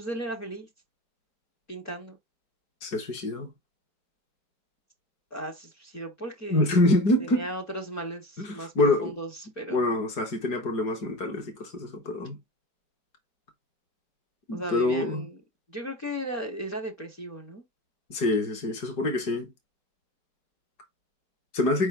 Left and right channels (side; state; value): right; late; 4.8 ms